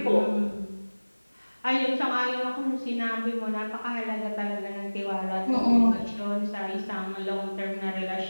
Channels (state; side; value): inverted; both; correlation -1.00